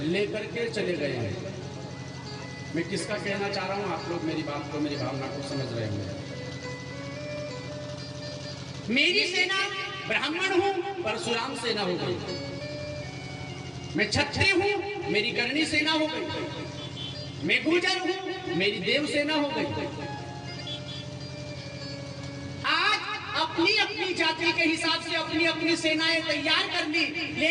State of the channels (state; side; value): identical; both; correlation 1.00